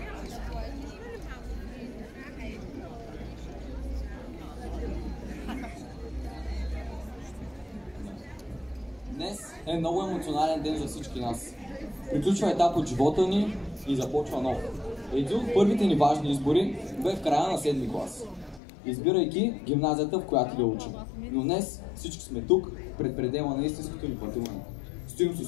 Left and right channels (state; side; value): drops out; right; at 18.6 s